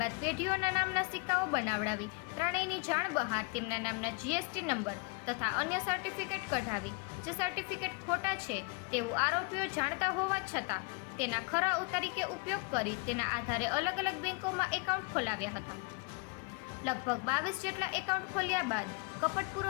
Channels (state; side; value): quieter; right; 29.7 dB